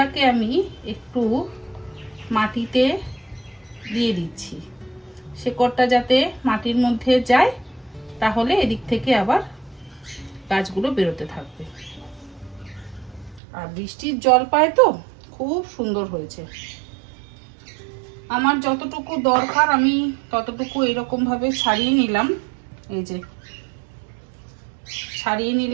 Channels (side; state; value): left; drops out; at 13.4 s